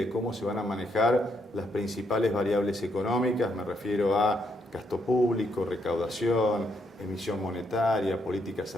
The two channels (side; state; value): both; normal; correlation 0.75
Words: cómo se van a manejar las principales variables económicas, me refiero a gasto público, recaudación, emisión monetaria, política